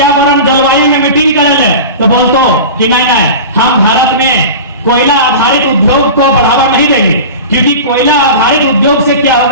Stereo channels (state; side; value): inverted; both; correlation -0.32